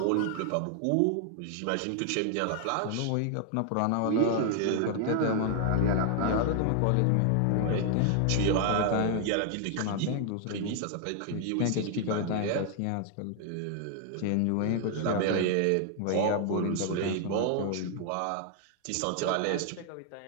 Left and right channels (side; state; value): both; different; correlation 0.00